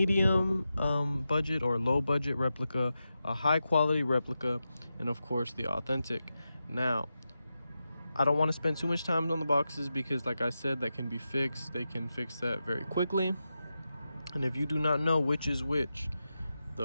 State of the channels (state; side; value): inverted; both; correlation -0.90